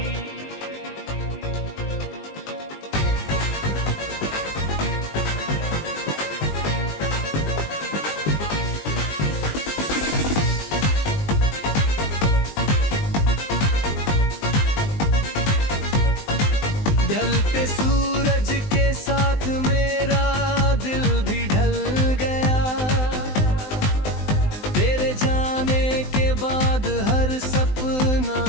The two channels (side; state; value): right; late; 19 ms